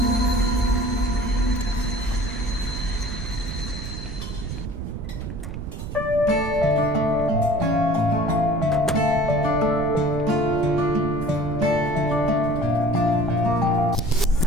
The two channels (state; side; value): noise; right; rumble, 7 dB below the sound